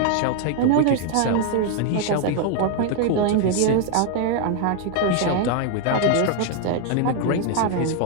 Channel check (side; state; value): both; different; correlation 0.00